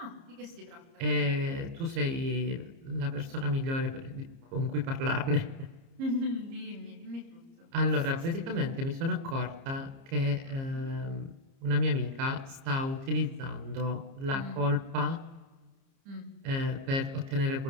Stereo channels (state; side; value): late; left; 30 ms